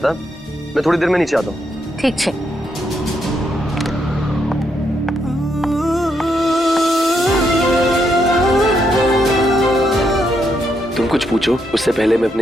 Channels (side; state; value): both; normal; correlation 0.78